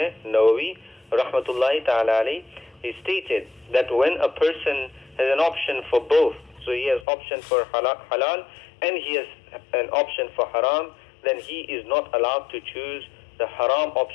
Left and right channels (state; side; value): drops out; right; at 7.1 s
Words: Nawawi Rahmatullahi Ta'ala alayhi, he stated that when a person has an option for both, so he has option for halal and he has an option for haram, then he is not allowed to choose the haram